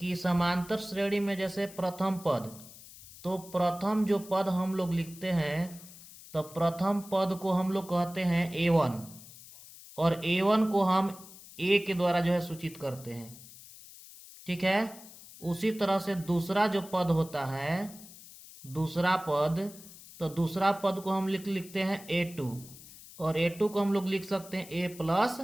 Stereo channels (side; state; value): left; noise; hiss, 18 dB below the sound